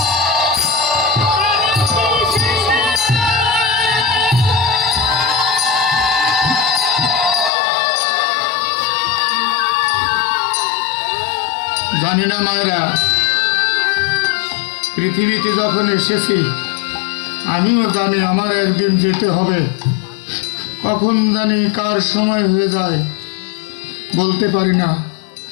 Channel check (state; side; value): drops out; right; at 7.5 s